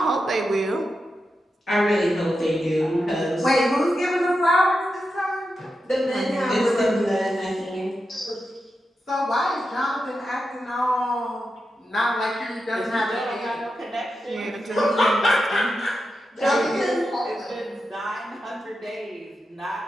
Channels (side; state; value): both; normal; correlation 0.89